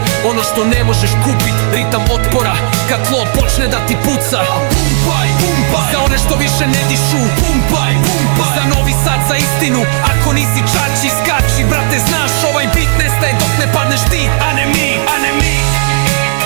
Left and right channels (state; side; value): silent; left; digital silence